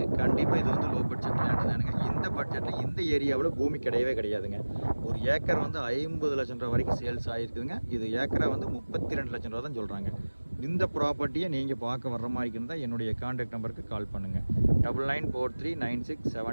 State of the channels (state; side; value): inverted; both; correlation -1.00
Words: கண்டிப்பாக இது வந்து லோ பட்ஜெட் லேண்டு தானுங்க. இந்த பட்ஜெட்டில் இந்த ஏரியாவில் பூமி கிடையவே கிடையாதுங்க. ஒரு ஏக்கர் வந்து 50 லட்சம் ரூபா வரைக்கும் சேல்ஸ் ஆகிருக்குதுங்க. இது ஏக்கரை வந்து 32 லட்சம் ரூபா தான் சொல்கிறாங்க. இந்த ப்ராப்பர்ட்டியை நீங்கள் பார்க்க வர்ற மாதிரி இருந்தால் என்னுடைய கான்டாக்ட் நம்பருக்கு கால் பண்ணுங்கள்.